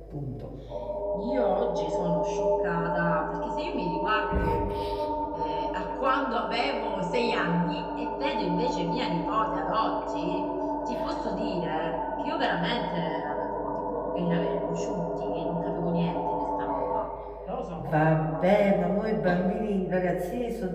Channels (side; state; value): both; identical; correlation 1.00